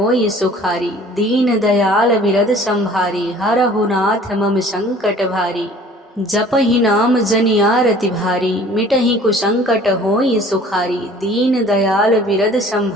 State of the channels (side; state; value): both; normal; correlation 0.50